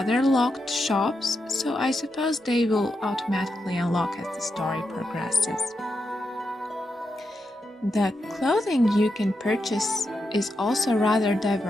locked shops, so I suppose they will automatically unlock as the story progresses. The clothing you can purchase is also rather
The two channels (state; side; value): normal; both; correlation 0.85